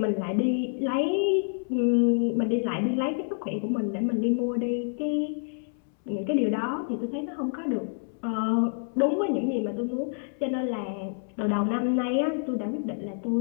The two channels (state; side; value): silent; right; 60 dB below the other